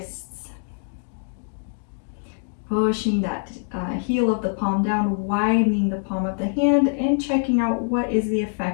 Pushing that heel of the palm down, widening the palm of the hand, and checking out what is the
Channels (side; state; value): right; silent; digital silence